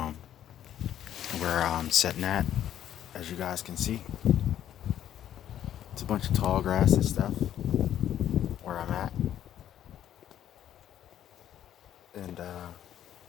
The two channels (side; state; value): right; quieter; 11.0 dB